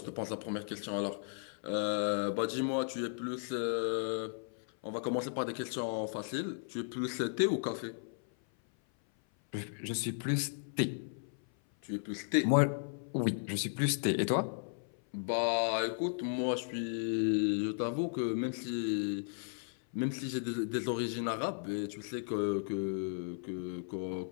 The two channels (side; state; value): right; silent; 54 dB below the other